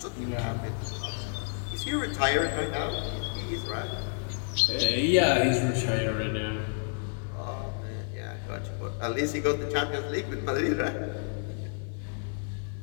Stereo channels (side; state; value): right; silent; digital silence